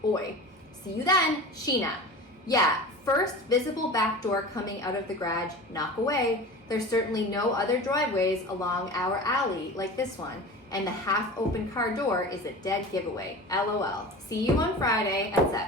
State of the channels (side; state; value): both; normal; correlation 0.34